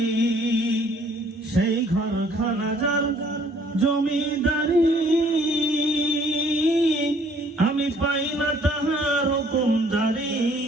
সেই ঘরখানা যার জমিদারি, আমি পাই না তাহার হুকুমদারি।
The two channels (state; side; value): normal; both; correlation 0.60